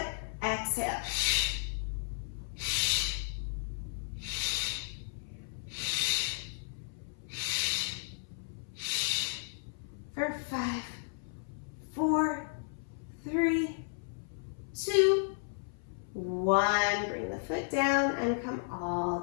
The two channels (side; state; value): right; silent; 55 dB below the other